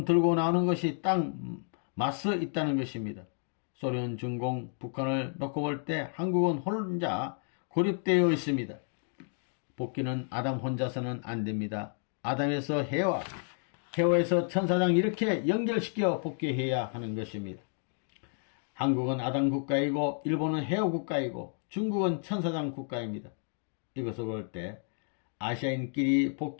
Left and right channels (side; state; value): right; silent; 57 dB below the other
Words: 들고 나오는 것이 딱 맞서 있다는 것입니다. 소련, 중공, 북한을 놓고 볼 때 한국은 혼자 고립되어 있습니다. 복귀는 아담 혼자서는 안 됩니다. 아담에서 해와, 해와에서 천사장 이렇게 연결시켜 복귀해야 하는 것입니다. 한국은 아담 국가이고 일본은 해와 국가이고 중국은 천사장 국가입니다. 이것을 볼 때 아시아인끼리